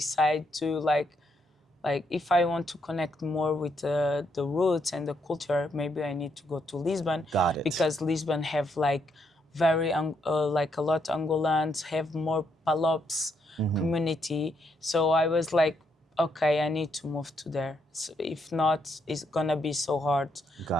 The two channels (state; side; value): normal; both; correlation 0.76